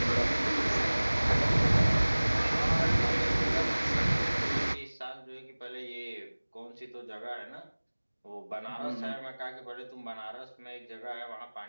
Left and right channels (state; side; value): inverted; both; correlation -1.00